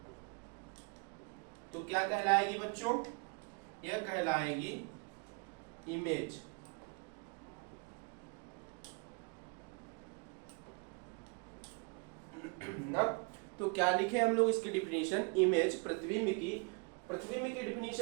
तो क्या कहलाएगी बच्चों? यह कहलाएगी इमेज। ना, तो क्या लिखे हम लोग इसकी डिफिनीशन? इमेज प्रतिबिंब की, प्रतिबिंब की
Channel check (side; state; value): left; quieter; 33.9 dB